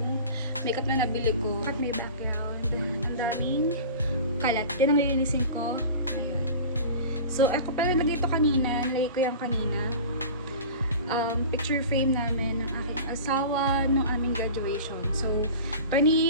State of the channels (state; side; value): inverted; both; correlation -0.36